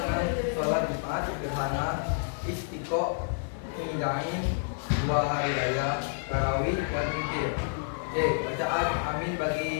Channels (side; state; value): right; silent; digital silence